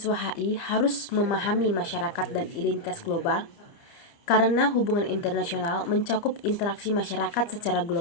HI harus memahami masyarakat dan identitas global? Karena hubungan internasional mencakup interaksi masyarakat secara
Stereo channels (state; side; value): late; right; 29 ms